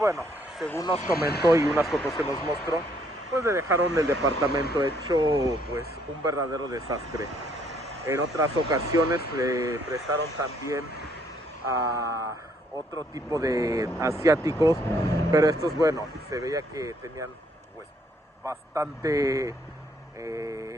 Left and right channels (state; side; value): normal; both; correlation 0.67